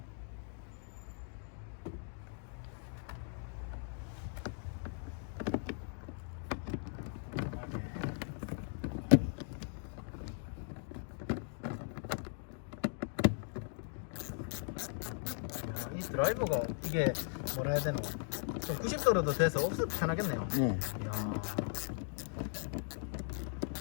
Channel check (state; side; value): silent; right; 52 dB below the other